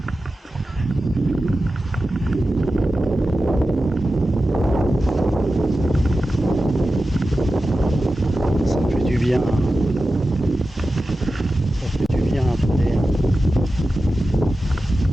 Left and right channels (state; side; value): normal; both; correlation 0.93